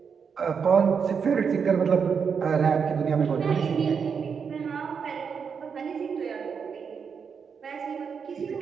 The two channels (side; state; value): left; quieter; 6.3 dB